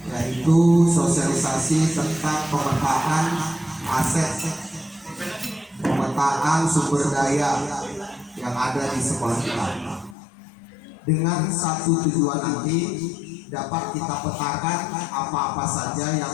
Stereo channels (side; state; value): right; drops out; at 10.2 s